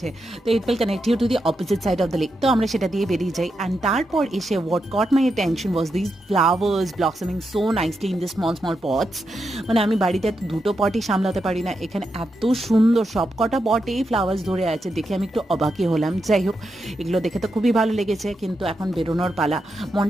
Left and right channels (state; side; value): normal; both; correlation 0.85